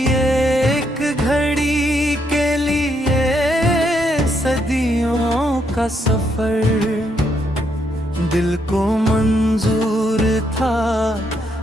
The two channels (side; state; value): both; normal; correlation 0.76